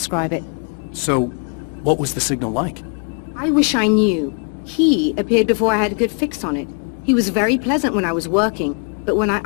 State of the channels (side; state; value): right; quieter; 38.9 dB